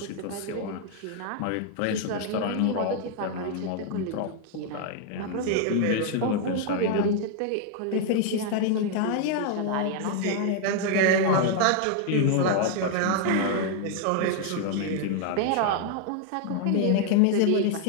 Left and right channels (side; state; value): both; different; correlation 0.00